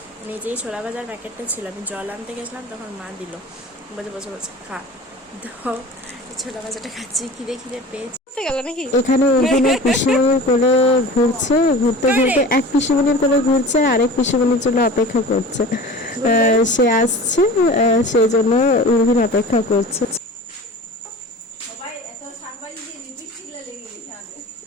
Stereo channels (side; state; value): both; normal; correlation 0.38